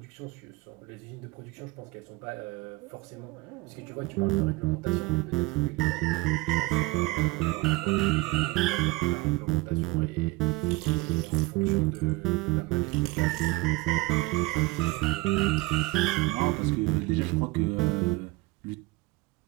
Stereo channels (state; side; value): quieter; left; 22.2 dB